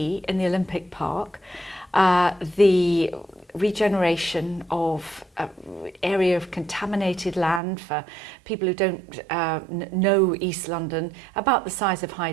in the Olympic Park, the regeneration of area of contaminated land for people who don't know East London, about the size of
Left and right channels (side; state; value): left; drops out; at 7.6 s